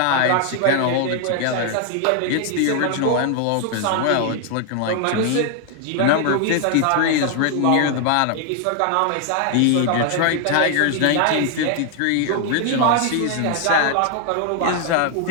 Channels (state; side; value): different; both; correlation 0.00